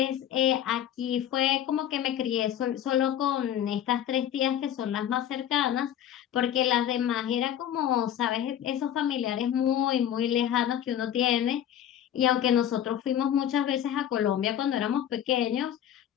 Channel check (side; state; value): right; quieter; 10.4 dB